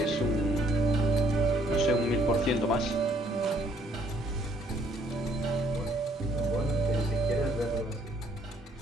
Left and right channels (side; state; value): both; normal; correlation 0.64